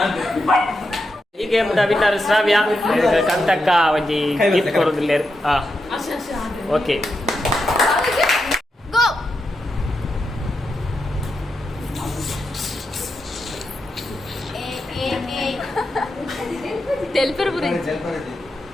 ಈ ಗೇಮ್ ವಿನ್ನರ್ ಶ್ರಾವ್ಯ ಕಂತಕ್ಕ ಒಂಜಿ ಗಿಫ್ಟ್ ಕೊಡೋದಿಲ್ಲ ಓಕೆ ತೆಲ್ಪರ್ ಬುರಿ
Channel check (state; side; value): normal; both; correlation 0.86